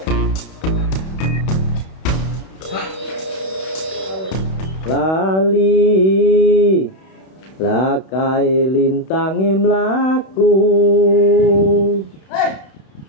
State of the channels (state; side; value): late; right; 31 ms